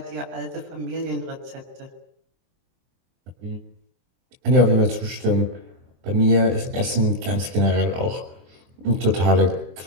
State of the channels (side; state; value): left; late; 23 ms